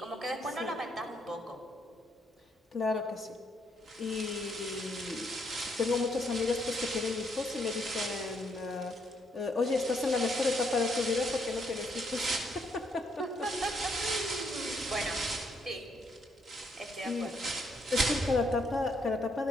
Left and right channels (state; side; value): normal; both; correlation 0.73